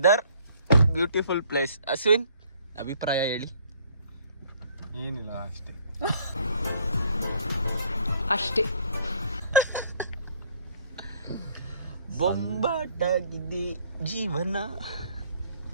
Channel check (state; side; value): inverted; both; correlation -0.60